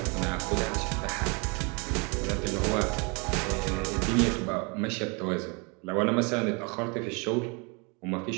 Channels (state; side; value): quieter; left; 31.7 dB